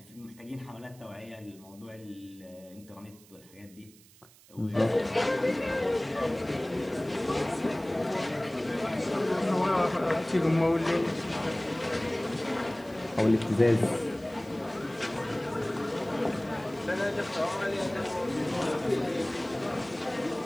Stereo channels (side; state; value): right; noise; hiss, 25 dB below the sound